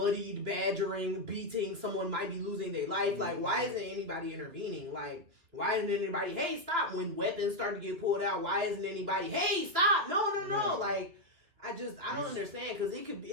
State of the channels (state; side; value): late; left; 2.9 ms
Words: badgering, beating, someone might be losing their life. Like, why isn't anybody intervening? Like, why isn't anybody, hey, stop? When weapons start to get pulled out, why isn't anybody, hey, stop? No. Like, I don't understand because it